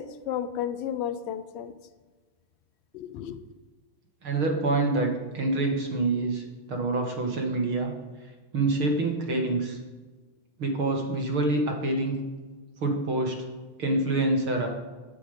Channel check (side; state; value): left; late; 6.5 ms